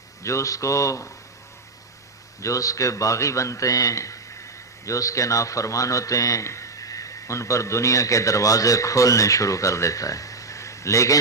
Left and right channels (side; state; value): left; quieter; 3.7 dB